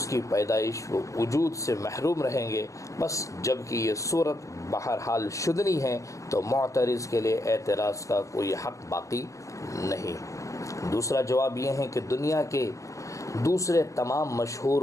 کی پیدائش و وجود سے محروم رہیں گے۔ بس جبکہ یہ صورت بہرحال شدنی ہے تو معترض کے لیے اعتراض کا کوئی حق باقی نہیں۔ دوسرا جواب یہ ہے کہ دنیا کے دوسرے تمام مشہور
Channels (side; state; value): right; late; 0.15 ms